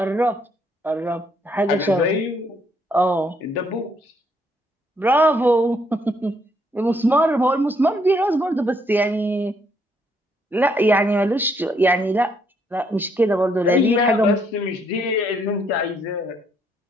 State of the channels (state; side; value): normal; both; correlation 0.71